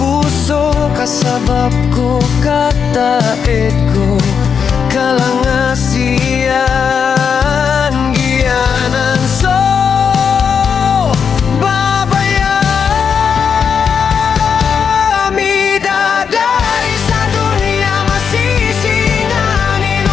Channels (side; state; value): right; quieter; 6.7 dB